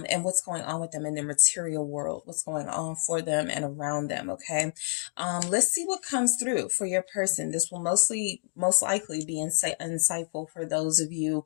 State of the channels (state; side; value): silent; right; digital silence